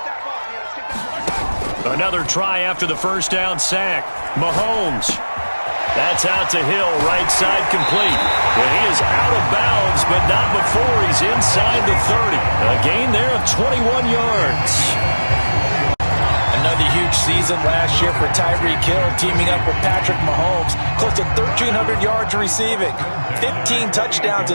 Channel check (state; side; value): inverted; both; correlation -1.00